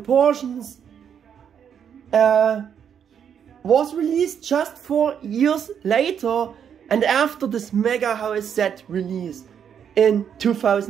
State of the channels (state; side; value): quieter; left; 8.2 dB